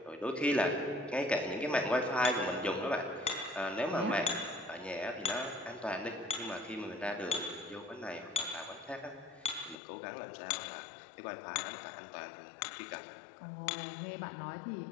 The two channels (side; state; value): right; drops out; at 9.8 s